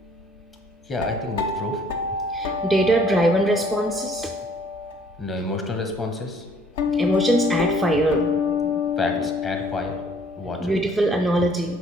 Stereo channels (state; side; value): normal; both; correlation 0.59